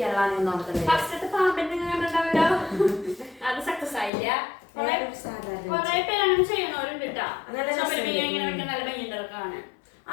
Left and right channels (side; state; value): right; drops out; at 4.1 s